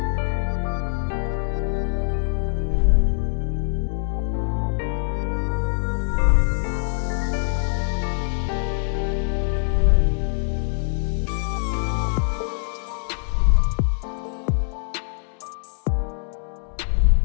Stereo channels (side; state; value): right; silent; 63 dB below the other